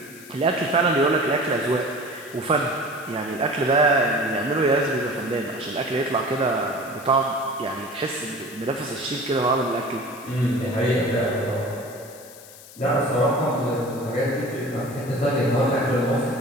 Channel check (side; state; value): left; noise; hiss, 19 dB below the sound